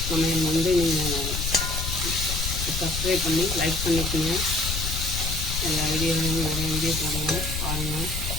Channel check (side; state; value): left; noise; rumble, 3 dB below the sound